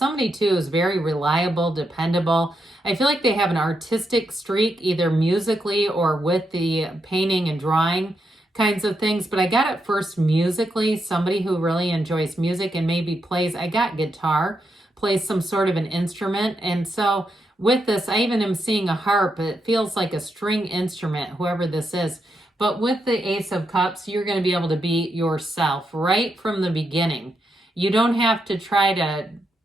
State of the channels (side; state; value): both; normal; correlation 0.83